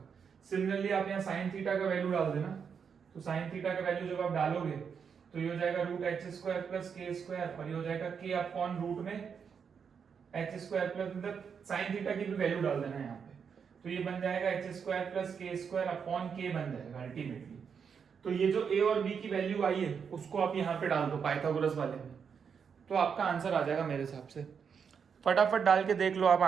सिमिलरली आप यहाँ साइन थीटा का वैल्यू डाल देना, तो साइन थीटा का वैल्यू जब आप डालोगे तो ये हो जाएगा root H square plus K square, और ये हो जाएगा के अपॉन रूट में एच स्क्वायर प्लस, मतलब साइन थीटा की भी वैल्यू डाल देना यहाँ पे, तो ये बन जाएगा H square plus K square upon के बन जाएगा अल्टीमेटली। तो ये जो ए और बी की वैल्यू आई है उसको आप यहाँ पे डाल दो पाइथागोरस वाले में, तो आपका आंसर आ जाएगा मेरे हिसाब से। फटाफट डाल के देख लो आप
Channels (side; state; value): left; quieter; 6.7 dB